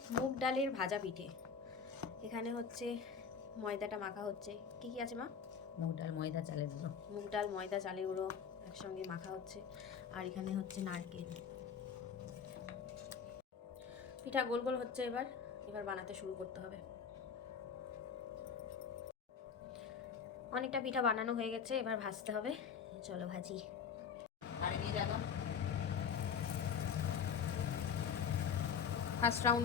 মুগ ডালের ভাজা পিঠে। এখানে হচ্ছে ময়দাটা মাখা হচ্ছে। কি কি আছে মা? মুগ ডাল, ময়দা, চালের গুঁড়ো। মুগ ডাল, ময়দা, চালের গুঁড়ো একসঙ্গে মাখা হচ্ছে। আর এখানে হচ্ছে নারকেল। পিঠা গোল গোল হচ্ছে। এবার বানাতে শুরু করতে হবে। অনেকটা পিঠা বানানো হয়ে গেছে, এবার ভাজতে হবে। চলো ভাজি। ফার্স্ট রাউন্ড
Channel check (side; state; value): right; quieter; 6.7 dB